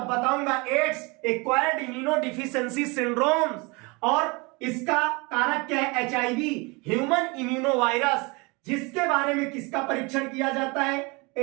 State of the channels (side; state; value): left; quieter; 27.4 dB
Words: बताऊंगा। एड्स एक्वायर्ड इम्यूनोडिफिशियेंसी सिंड्रोम्स, और इसका कारक क्या है? एचआईवी, ह्यूमन इम्यूनोवायरस, जिसके बारे में किसका परीक्षण किया जाता है?